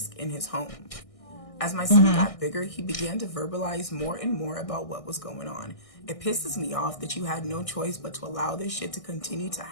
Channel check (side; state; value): right; late; 1.6 ms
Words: in his home. As my son got bigger, he began to verbalize more and more about what was going on. It pisses me off that you had no choice but to allow this shit to continue to